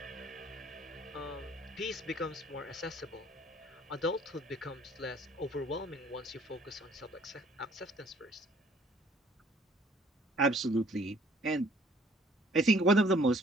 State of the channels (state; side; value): normal; both; correlation 0.58